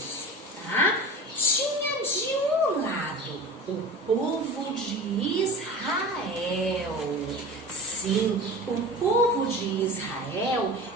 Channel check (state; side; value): normal; both; correlation 0.34